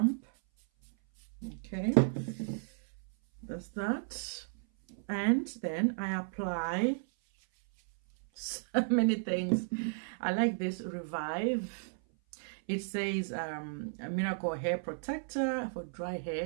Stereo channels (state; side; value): silent; left; 55 dB below the other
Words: Okay, that's that. And then I apply so many things. I like this Revive. It says a miracle hair protector for dry